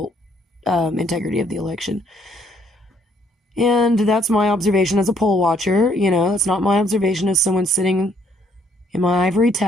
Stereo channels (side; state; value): both; normal; correlation 0.67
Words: integrity of the election. And that's my observation as a poll watcher. That's not my observation as someone sitting in my ivory